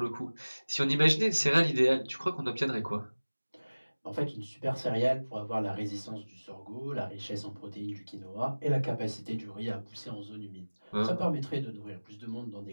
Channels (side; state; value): both; inverted; correlation -1.00